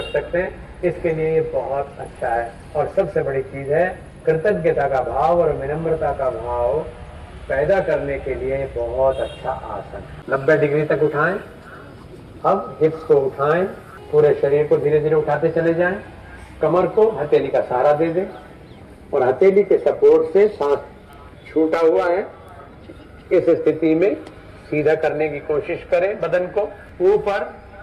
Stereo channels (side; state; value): both; identical; correlation 1.00